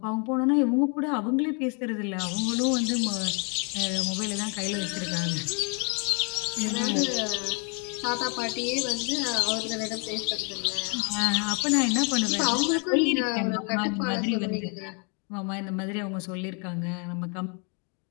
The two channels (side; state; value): right; quieter; 36.3 dB